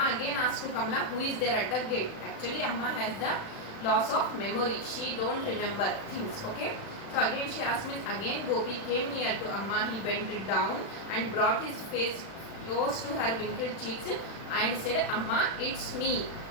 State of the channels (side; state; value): right; late; 36 ms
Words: again asked to Kamala, who is there at the gate. Actually, Amma has the loss of memory. She don't remember things. Okay. So again she asked me, again Gopi came near to Amma. He bent down and brought his face close to her wrinkled cheeks and said, Amma, it's me,